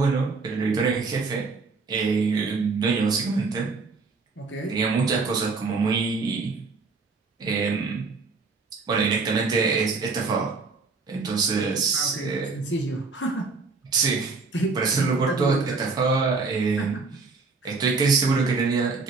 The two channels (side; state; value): left; quieter; 4.2 dB